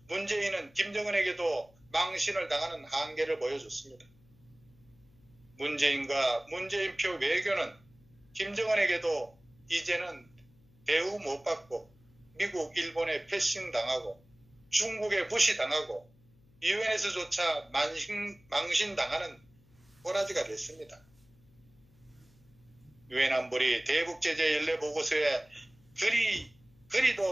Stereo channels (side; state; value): left; noise; hum, 29 dB below the sound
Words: 문재인은 김정은에게도 망신을 당하는 한계를 보여줬습니다. 문재인과 문재인표 외교는 김정은에게도 이제는 대우 못 받고 미국, 일본에 패싱당하고 중국에 무시당하고 유엔에서조차 망신당하는 꼬라지가 됐습니다. 유엔 안보리 대북제재 연례 보고서에